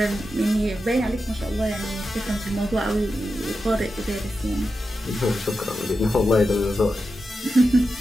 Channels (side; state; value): both; normal; correlation 0.90